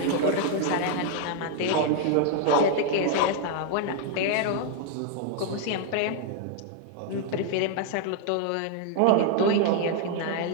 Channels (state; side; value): different; both; correlation 0.00